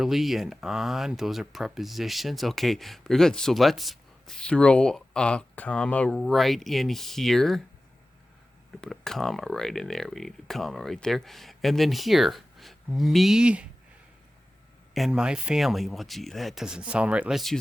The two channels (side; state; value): both; normal; correlation 0.95